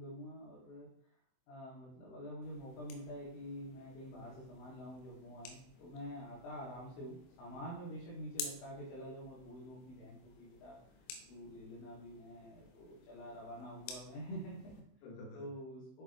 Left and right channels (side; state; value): right; late; 23 ms